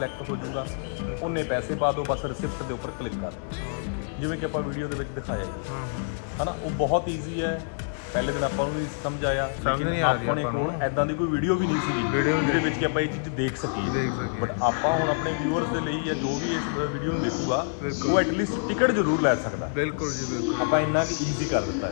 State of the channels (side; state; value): right; silent; digital silence